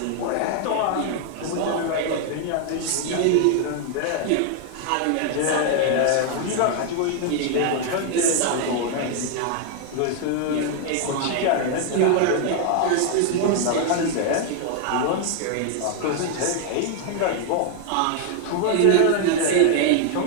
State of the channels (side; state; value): both; different; correlation 0.00